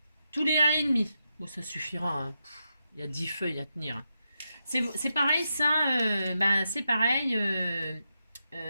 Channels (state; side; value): inverted; both; correlation -0.87